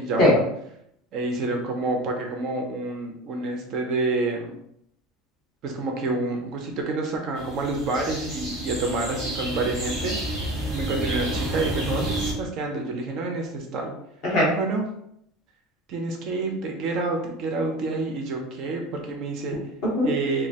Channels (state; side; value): normal; both; correlation 0.33